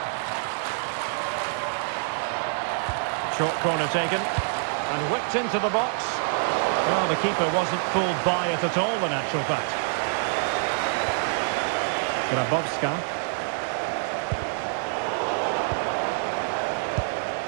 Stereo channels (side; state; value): left; silent; digital silence